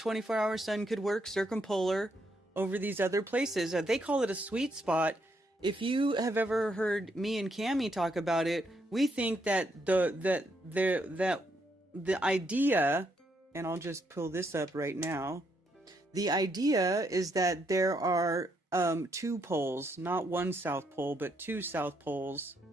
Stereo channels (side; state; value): both; normal; correlation 0.76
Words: sun could work circumpolar over these other places. They call it a sweet spot. If you have ever heard me and Cammie talk about it, we think that the idea, and I'll just pull this up right now. The idea is that there are two poles, not one South Pole, but two South Poles.